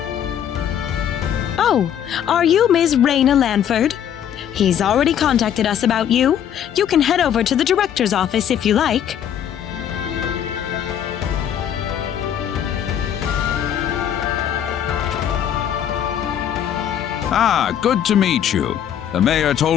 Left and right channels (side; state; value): right; quieter; 9.6 dB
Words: Oh, are you Ms. Rena Lanford? He's already contacted us about you. You can head over to the director's office if you like. Ah, good to meet you. The mayor